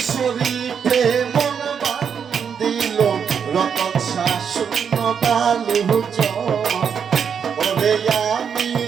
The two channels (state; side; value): quieter; left; 7.1 dB